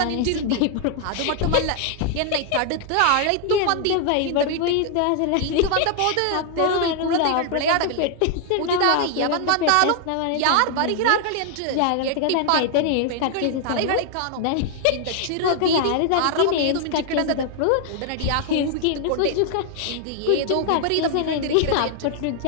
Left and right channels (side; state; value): both; different; correlation 0.00